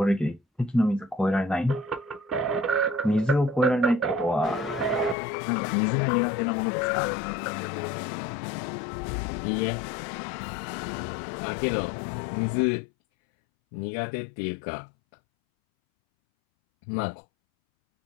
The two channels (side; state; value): right; drops out; at 5.2 s